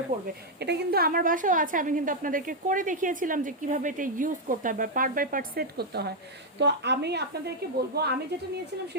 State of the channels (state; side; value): normal; both; correlation 0.00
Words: পড়বে। এটা কিন্তু আমার বাসাও আছে, আমি কিন্তু আপনাদেরকে করে দেখিয়েছিলাম যে কিভাবে এটা ইউজ করতে হয় বা পার্ট বাই পার্ট সেট করতে হয়। তো আমি আপনাদেরকে বলবো, আমি যেটা নিয়েছিলাম